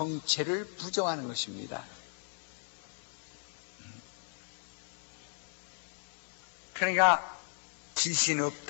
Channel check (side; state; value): right; silent; 54 dB below the other